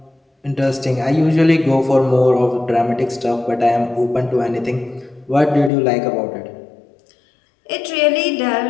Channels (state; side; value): drops out; right; at 5.7 s